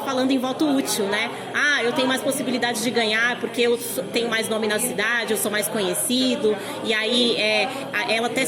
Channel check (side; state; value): both; identical; correlation 1.00